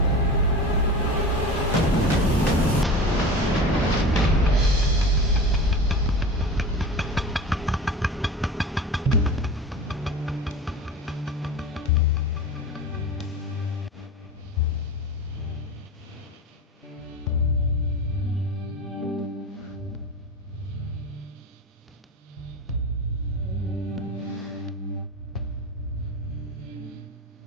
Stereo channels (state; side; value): normal; both; correlation 0.31